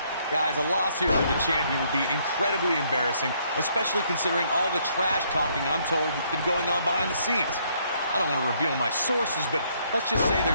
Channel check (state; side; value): inverted; both; correlation -0.69